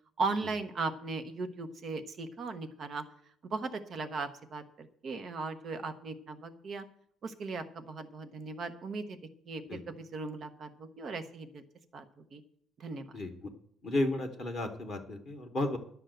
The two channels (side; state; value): both; normal; correlation 0.73